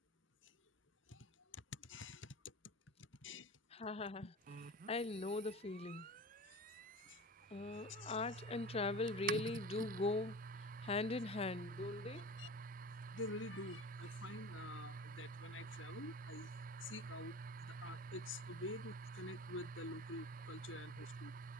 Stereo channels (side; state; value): both; normal; correlation 0.35